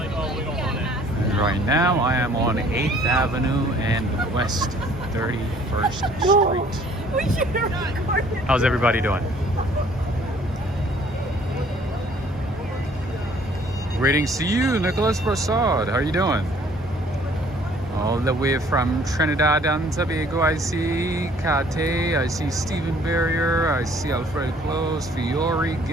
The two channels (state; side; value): normal; both; correlation 0.57